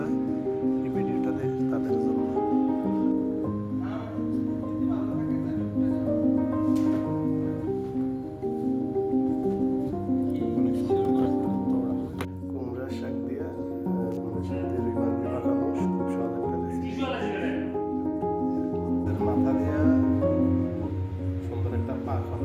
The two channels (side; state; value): both; identical; correlation 1.00